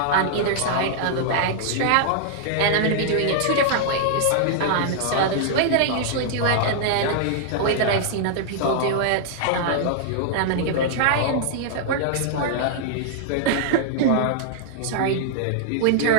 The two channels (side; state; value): both; different; correlation -0.01